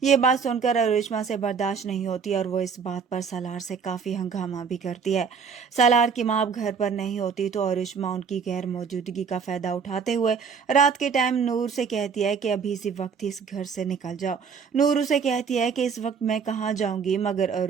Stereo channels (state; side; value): quieter; left; 6.1 dB